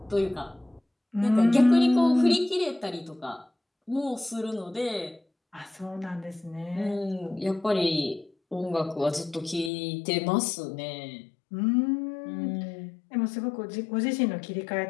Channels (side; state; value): right; drops out; at 9.7 s